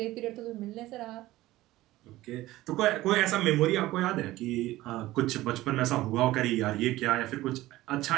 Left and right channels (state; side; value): quieter; left; 16.9 dB